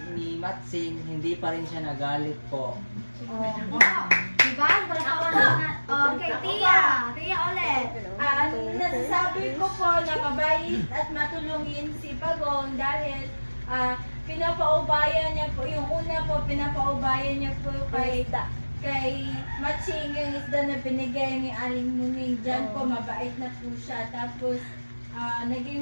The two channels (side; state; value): both; inverted; correlation -1.00